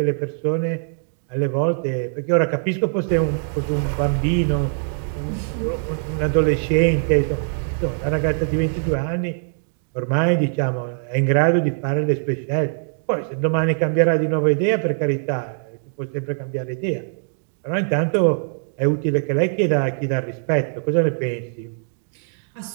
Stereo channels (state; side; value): silent; left; digital silence